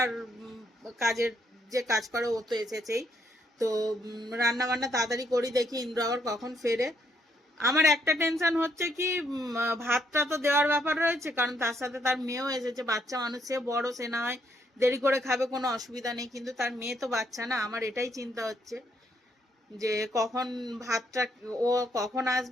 কাজের যে কাজ করে ও তো এসেছেই। তো রান্না বান্না তাড়াতাড়ি করি, দেখি ইন্দ্র আবার কখন ফেরে। আমার একটা টেনশন হচ্ছে কি, ভাতটা তো দেওয়ার ব্যাপার রয়েছে, কারণ তার সাথে তার মেয়েও এসেছে। বাচ্চা মানুষ, সে বড়, সে না হয় দেরি করে খাবে, কোনো অসুবিধা নেই, কিন্তু তার মেয়ে তো বাচ্চা না। আমার এটাই চিন্তা হচ্ছে যে কখন ভাতটা, ও কখন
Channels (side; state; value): both; normal; correlation 0.72